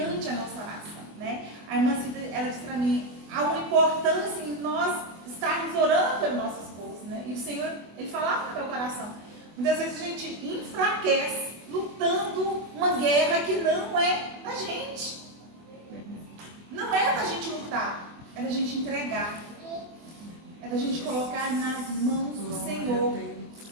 a nossa oração, né? A irmã Cida, ela disse para mim, há uma importância em nós estarmos orando pelo nosso esposo, né? E o Senhor, Ele falava no meu coração. Muitas vezes a gente enfraquece lutando uma guerra que não é da gente. Não é da gente lutar, é da gente entregar. É da gente colocar nas mãos do Senhor.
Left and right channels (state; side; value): late; left; 24 ms